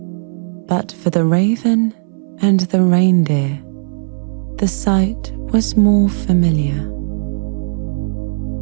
But for the raven and the reindeer, the sight was more familiar.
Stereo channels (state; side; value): silent; left; 65 dB below the other